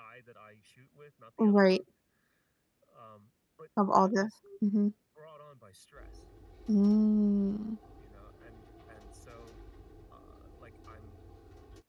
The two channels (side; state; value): both; identical; correlation 1.00